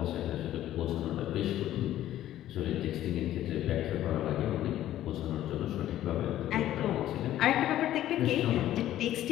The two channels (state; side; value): quieter; right; 13.0 dB